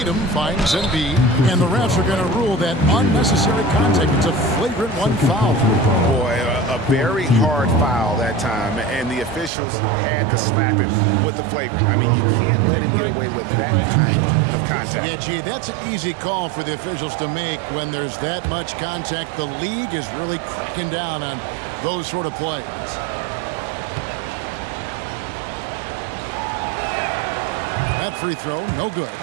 finds Embiid, and the refs are going to rule that unnecessary contact. It's a flagrant 1 foul. Boy, a very hard foul that time, and the officials had to slap him with the flagrant. I mean, you can't let him get away with that kind of contact. Yeah, gee, that's an easy call for the officials to make when there's that much contact. The league is really cracking down on those sort of plays. That free throw, no good.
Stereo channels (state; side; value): drops out; left; at 9.5 s